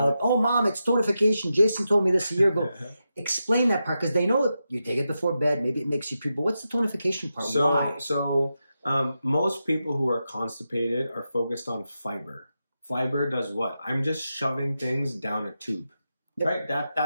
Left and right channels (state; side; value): inverted; both; correlation -0.89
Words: oh, Mom, it's tonification. Jason told me this a year ago. Explain that part, because they know you take it before bed, maybe it makes you puke, but what's the tonification part? Why? So most people who are constipated are focused on fiber. Fiber does what? I'm just shoving things down a tube, right?